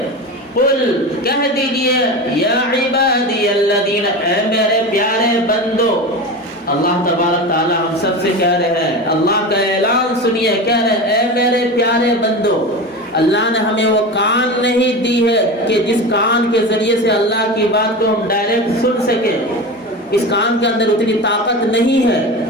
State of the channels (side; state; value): both; normal; correlation 0.26